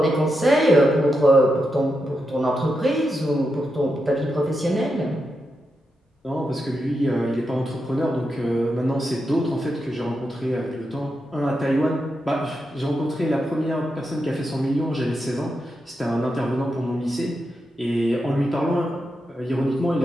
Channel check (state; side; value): normal; both; correlation 0.86